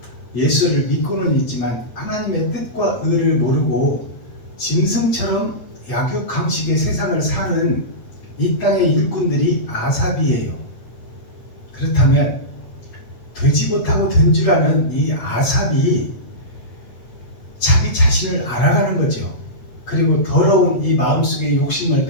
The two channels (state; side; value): late; right; 8.5 ms